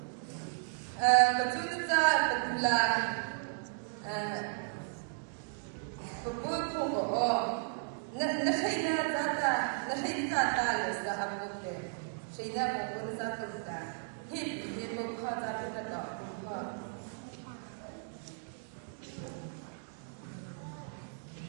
Patulita Patula Papuko Nahina Tata Nahina Talis the Abuke Shida Papuza Kuta Hip Pata Pata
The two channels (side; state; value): left; silent; digital silence